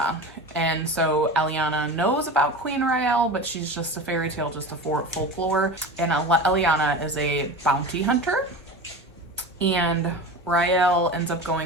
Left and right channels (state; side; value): normal; both; correlation 0.30